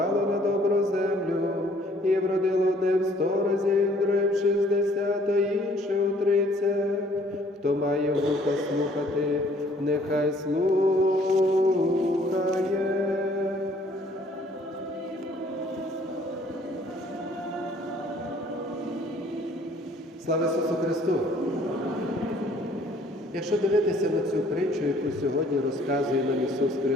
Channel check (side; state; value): both; normal; correlation 0.59